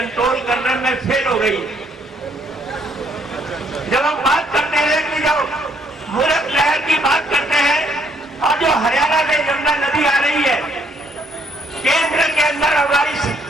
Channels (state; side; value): normal; both; correlation 0.68